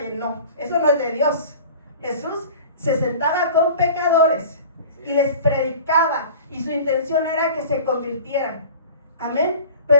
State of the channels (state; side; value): inverted; both; correlation -0.41